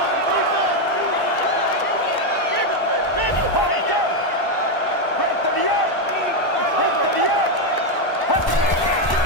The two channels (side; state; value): right; late; 1.0 ms